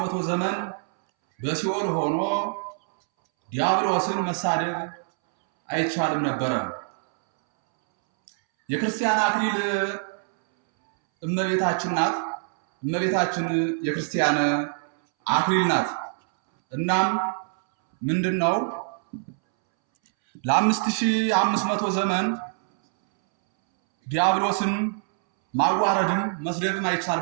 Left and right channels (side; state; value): left; silent; 62 dB below the other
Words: ዘመን በሲኦል ሆኖ ዲያብሎስን መሳደብ አይቻልም ነበረ። የክርስቲያን አክሊል እመቤታችን ናት። እመቤታችን የክርስቲያን አክሊል ናት። እናም ምንድነው ለ5500 ዘመን ዲያብሎስን ማዋረድም መስደብም